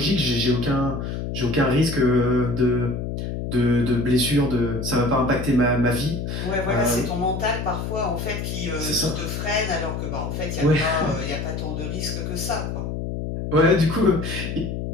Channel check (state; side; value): noise; left; hum, 4 dB below the sound